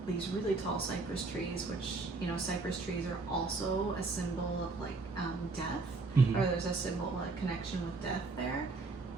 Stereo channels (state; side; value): quieter; left; 3.7 dB